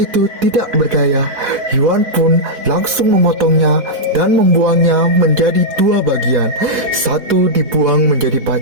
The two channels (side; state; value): left; late; 3.8 ms